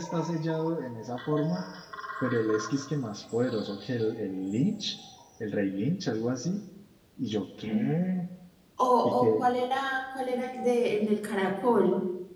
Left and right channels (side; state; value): both; identical; correlation 1.00